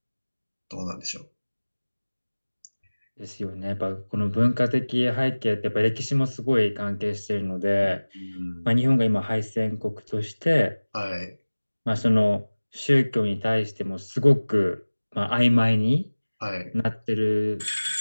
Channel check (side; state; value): both; inverted; correlation -1.00